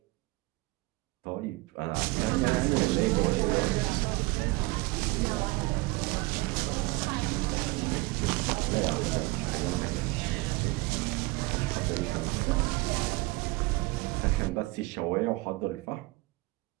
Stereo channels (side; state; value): left; quieter; 22.6 dB